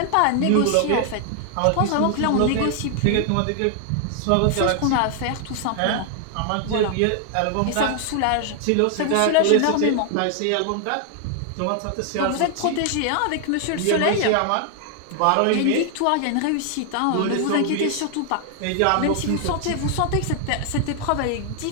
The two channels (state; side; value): different; both; correlation 0.00